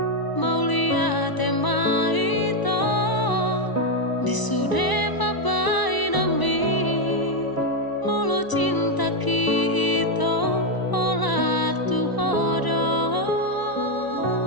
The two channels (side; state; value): right; late; 1.0 ms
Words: mau lihat tema itu disude pabai nami molo cinta kita olah tuhodo